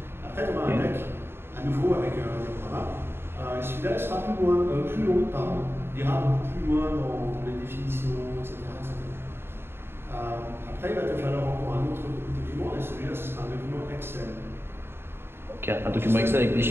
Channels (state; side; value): late; left; 0.11 ms